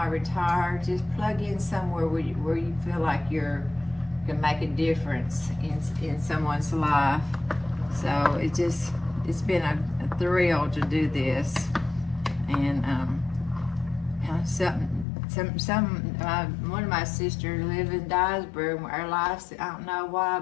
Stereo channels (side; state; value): right; drops out; at 15.1 s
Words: just plug in somewhere where you feel like you can make a difference in someone's life. So it's been a thrill to do this. And one of my sisters live in Dyersburg. Our lives, I don't know why,